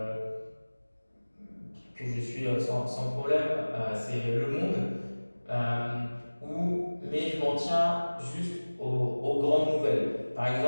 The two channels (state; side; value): inverted; both; correlation -1.00